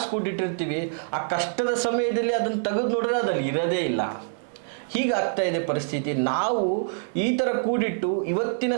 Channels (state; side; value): silent; left; 61 dB below the other